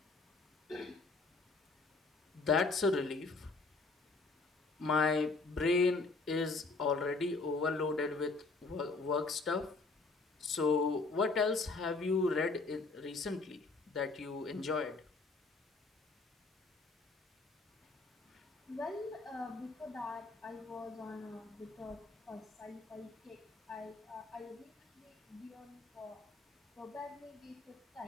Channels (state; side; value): quieter; right; 3.7 dB